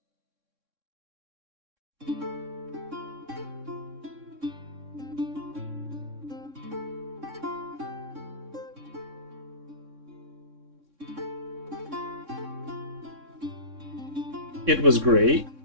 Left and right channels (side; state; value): left; late; 3.6 ms